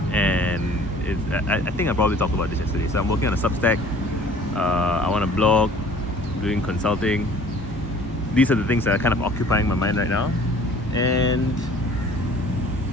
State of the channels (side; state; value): both; normal; correlation 0.50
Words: and I think I probably talked about this yesterday. So I'm working on a Substack. I want to blog, doing consulting. These are the things that are kind of occupying my mind right now.